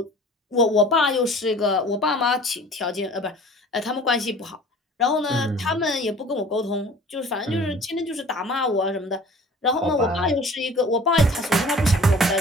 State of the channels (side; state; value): both; normal; correlation 0.46